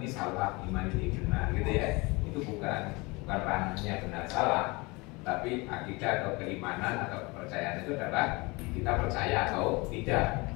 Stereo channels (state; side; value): quieter; right; 25.5 dB